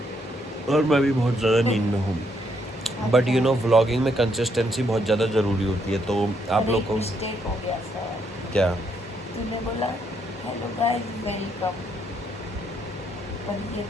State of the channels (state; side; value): normal; both; correlation 0.74